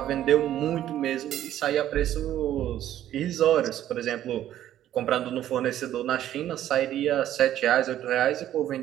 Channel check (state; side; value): quieter; left; 12.1 dB